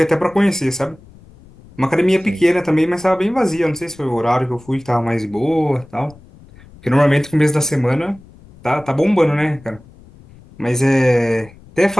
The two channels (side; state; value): left; noise; rumble, 24 dB below the sound